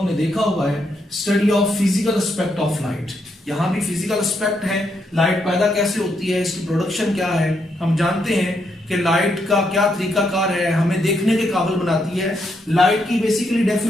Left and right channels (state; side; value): normal; both; correlation 0.78